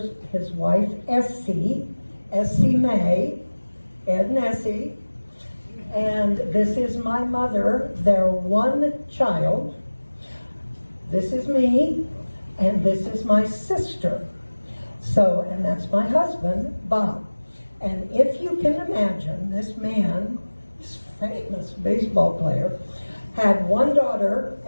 his wife, Essie May, Ed and Essie. And this is my mother, their one child. this is me, and this is my sister. So, and that's my husband, Bob. And if you can imagine, this man, this famous baseball player, had one daughter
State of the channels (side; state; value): both; inverted; correlation -1.00